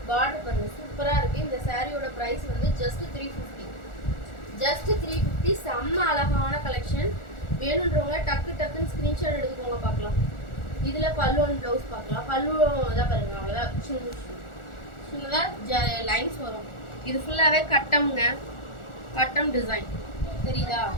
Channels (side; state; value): right; late; 1.4 ms